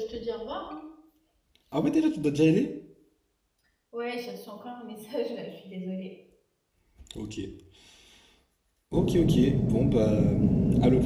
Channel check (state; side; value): identical; both; correlation 1.00